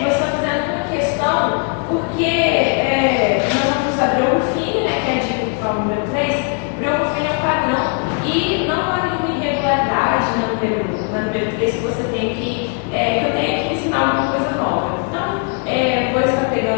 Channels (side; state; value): right; quieter; 39.4 dB